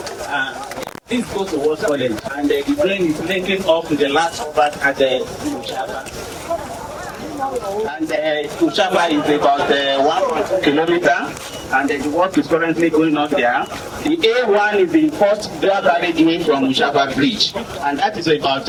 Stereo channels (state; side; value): identical; both; correlation 1.00